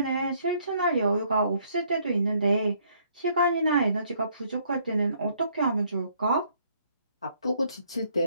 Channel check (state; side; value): inverted; both; correlation -0.67